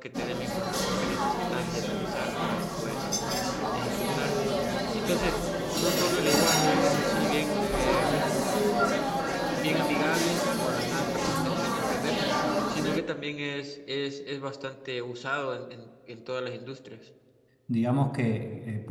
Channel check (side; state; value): both; identical; correlation 1.00